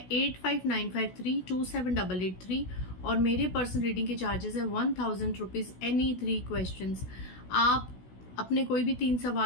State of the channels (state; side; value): late; right; 16 ms